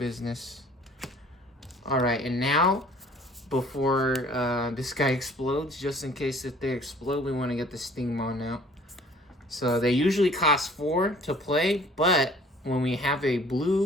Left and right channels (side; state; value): both; normal; correlation 0.53